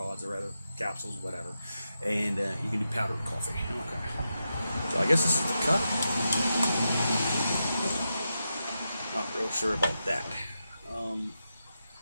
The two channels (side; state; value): both; inverted; correlation -0.87